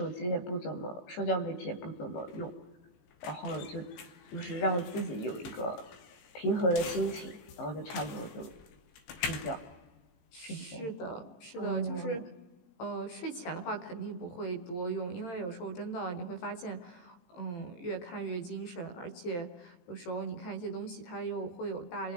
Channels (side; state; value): right; late; 18 ms